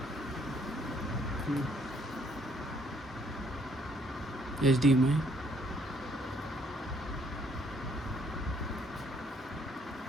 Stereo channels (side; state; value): both; normal; correlation 0.66